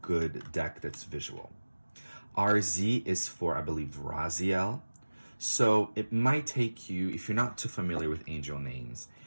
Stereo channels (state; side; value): inverted; both; correlation -1.00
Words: deck that's visual. RZ is for, I believe, Raziel. So it might take you, if you're not too familiar with angel names,